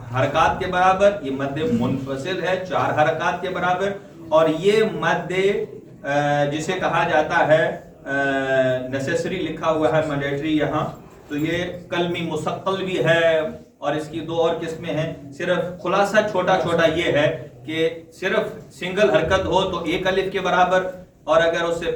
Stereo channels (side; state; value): both; identical; correlation 1.00